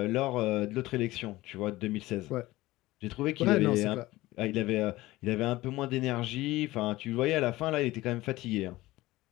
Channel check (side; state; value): right; quieter; 18.3 dB